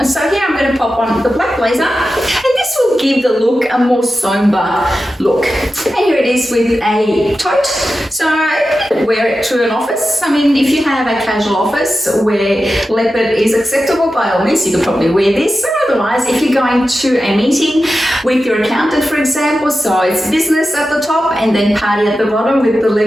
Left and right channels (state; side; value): normal; both; correlation 0.92